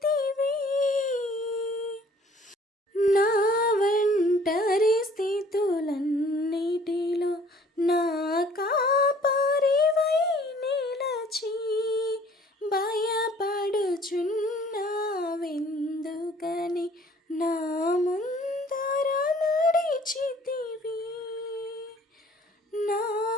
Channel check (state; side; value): normal; both; correlation 0.55